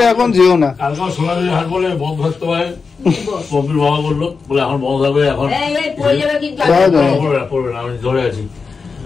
এখন যেও না। কালকে সোনাঝুরির হাট বলে বন্ধ থাকতে পারে, পম্পির বাবা বললো বলে এখন বন্ধ থাকবে, এখন পড়বে না, আমি ধরে আছি,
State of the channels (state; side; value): quieter; right; 4.9 dB